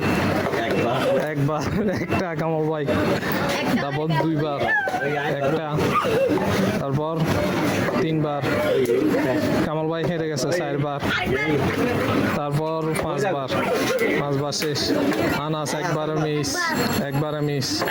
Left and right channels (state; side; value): identical; both; correlation 1.00